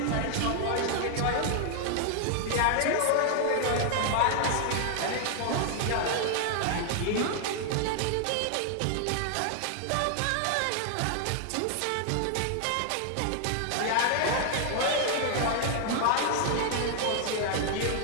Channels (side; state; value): both; different; correlation 0.00